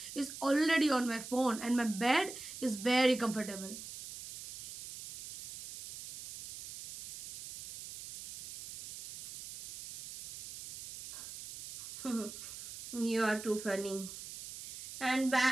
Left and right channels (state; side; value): noise; right; hiss, 12 dB below the sound